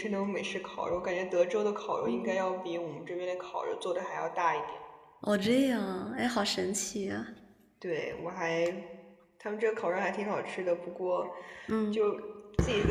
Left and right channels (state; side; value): identical; both; correlation 1.00